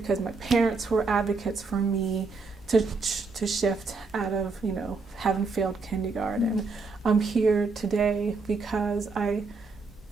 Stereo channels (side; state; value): left; quieter; 4.1 dB